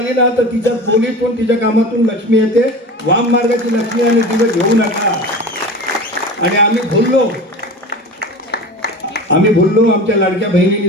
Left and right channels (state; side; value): normal; both; correlation 0.33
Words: ना तर तिच्या बोलीतून, तिच्या कामातून लक्ष्मी येते. वाम मार्गाची लक्ष्मी आणि तिला घेऊ नका. आणि आम्ही भुललो. आमच्या लाडक्या